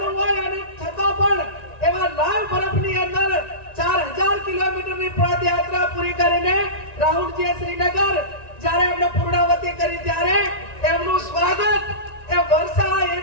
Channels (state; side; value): late; right; 1.9 ms